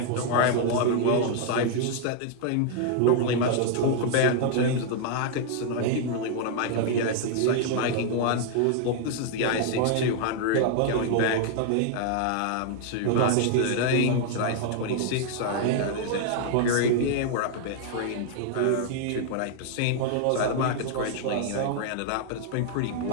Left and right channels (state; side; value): different; both; correlation 0.00